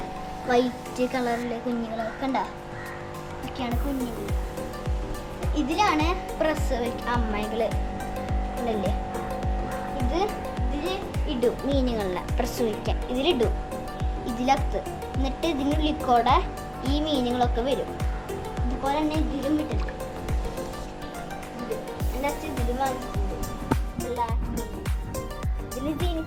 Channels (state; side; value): identical; both; correlation 1.00